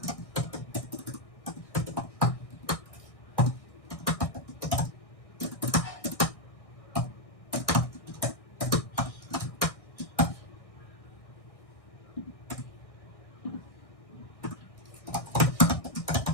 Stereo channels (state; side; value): late; right; 1.6 ms